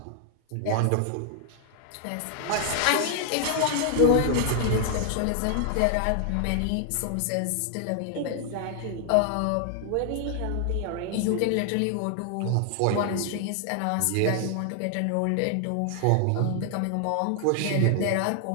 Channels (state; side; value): different; both; correlation 0.00